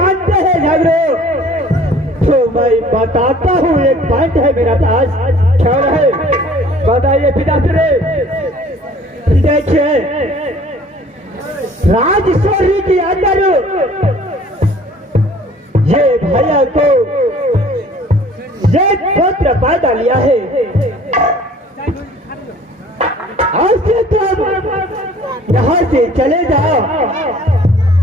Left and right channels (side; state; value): both; normal; correlation 0.52